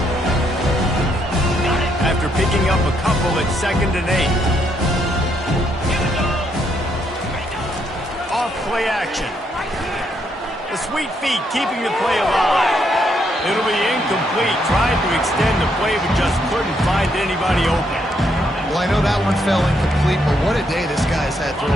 After picking up a couple at 2nd and 8. Off play action. The sweet feet keeping the play alive. It'll be incomplete. Tried to extend the play, but just couldn't find anybody open. Well, I know that one fell incomplete, but what a day this guy's had throwing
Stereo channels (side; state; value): both; normal; correlation 0.75